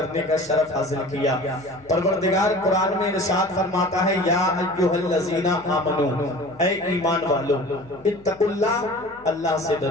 کا شرف حاصل کیا۔ پروردگار قرآن میں ارشاد فرماتا ہے، یا ایھا الذین آمنو، اے ایمان والو، اتقوا اللہ، اللہ سے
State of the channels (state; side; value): noise; left; hum, 27 dB below the sound